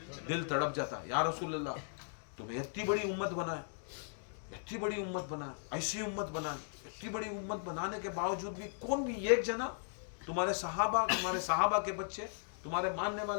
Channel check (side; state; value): right; silent; digital silence